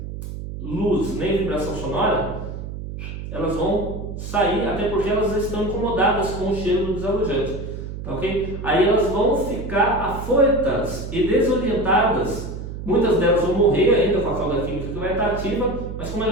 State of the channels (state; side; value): noise; right; hum, 8 dB below the sound